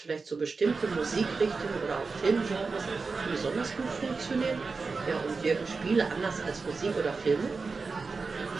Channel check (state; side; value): quieter; left; 4.4 dB